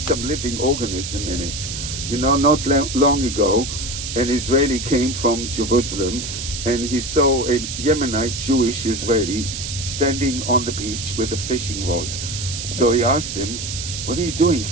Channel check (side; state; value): right; noise; hiss, 6 dB below the sound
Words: living organism in it. You know, not long ago, an Israeli came from Jerusalem, and he saw a Yemenite Jewish Israeli standing on the beach with a fishing rod. So he asked him, "What are you doing